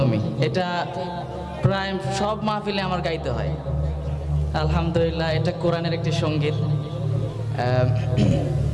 এটা প্রায় সব মাহফিলে আমার গাইতে হয়। আলহামদুলিল্লাহ, এটা কোরআনের একটি সঙ্গীত।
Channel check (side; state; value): both; identical; correlation 1.00